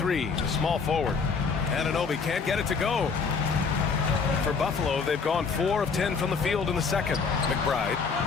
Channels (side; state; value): right; quieter; 5.2 dB